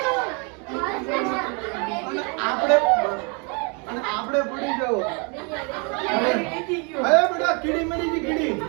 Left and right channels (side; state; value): left; quieter; 33.6 dB